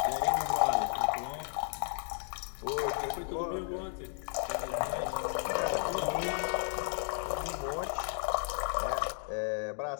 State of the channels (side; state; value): right; silent; 55 dB below the other